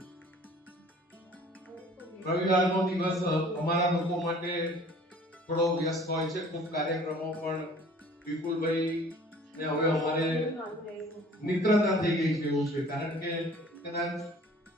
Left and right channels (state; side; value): normal; both; correlation 0.50